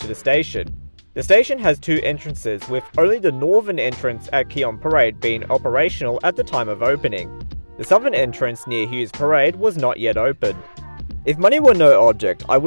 the station. The station has two entrances, with only the northern entrance at Keon Parade being operational at the time of opening. The southern entrance near Hughes Parade was not yet open. If money were no object, I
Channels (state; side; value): inverted; both; correlation -1.00